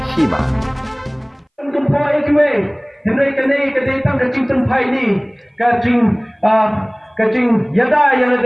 hima. Henry kene kadetang kacing tempai ni kacing yada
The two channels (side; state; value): both; identical; correlation 1.00